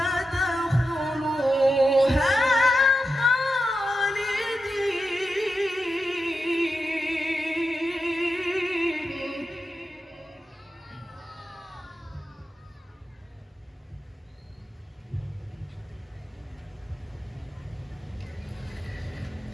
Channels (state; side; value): normal; both; correlation 0.89